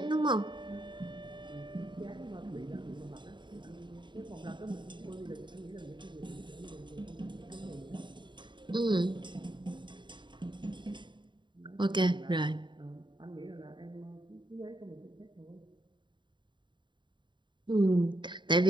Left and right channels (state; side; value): late; left; 0.23 ms